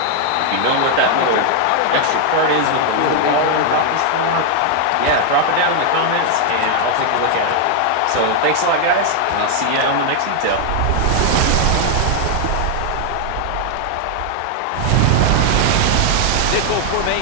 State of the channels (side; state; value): both; different; correlation 0.00